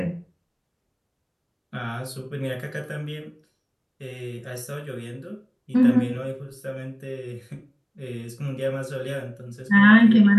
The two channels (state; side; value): identical; both; correlation 1.00